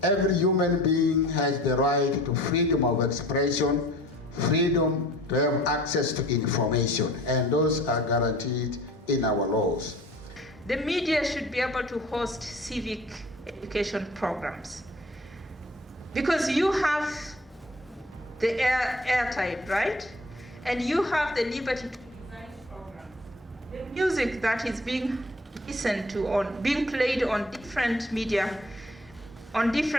every human being has the right to freedom of expression, freedom to have access to information, and those are guaranteed in our laws. The media should be able to host civic education programs, because you have the airtime, right? And you have the liberty to design programs. The music that is being listened to, being played on different media, on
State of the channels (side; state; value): both; normal; correlation 0.48